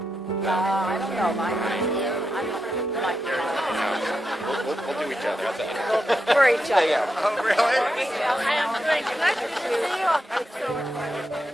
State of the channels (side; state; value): both; normal; correlation 0.86